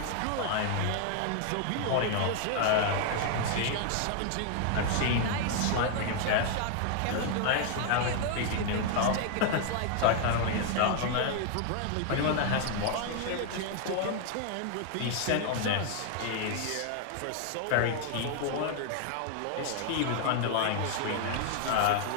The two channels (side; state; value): both; different; correlation 0.00